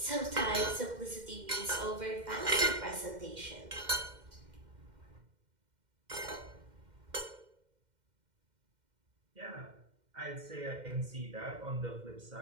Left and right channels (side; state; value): left; late; 2.1 ms